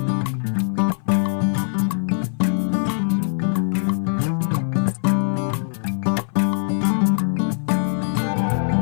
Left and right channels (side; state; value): right; silent; 57 dB below the other